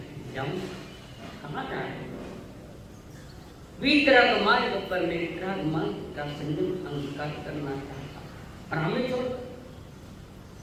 जाऊँ। कहाँ जा रहे हो? वितराग मार्ग पर मैं वितराग मार्ग का संयम अंगीकार करना चाहता हूँ और हमें छोड़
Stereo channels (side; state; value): both; identical; correlation 1.00